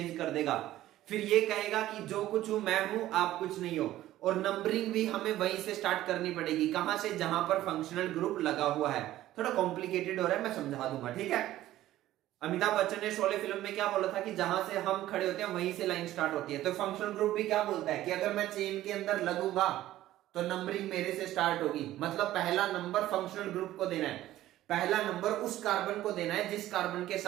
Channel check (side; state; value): left; quieter; 14.4 dB